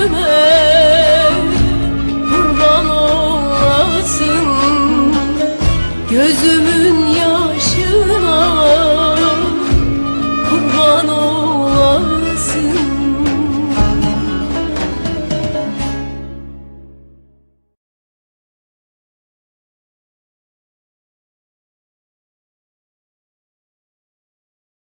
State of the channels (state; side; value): inverted; both; correlation -1.00